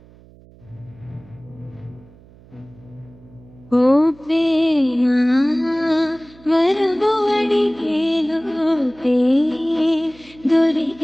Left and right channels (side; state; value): right; noise; hum, 25 dB below the sound